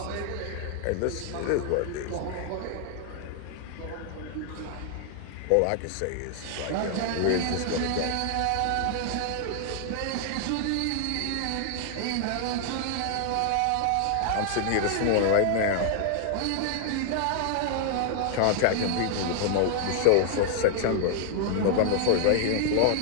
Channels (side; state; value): both; different; correlation 0.00